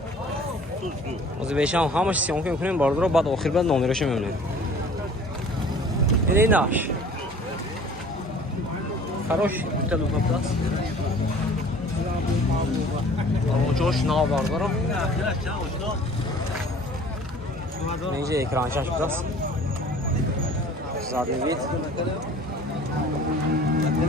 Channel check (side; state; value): both; normal; correlation 0.49